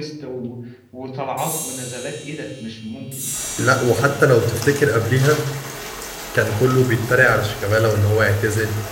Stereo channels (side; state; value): both; identical; correlation 1.00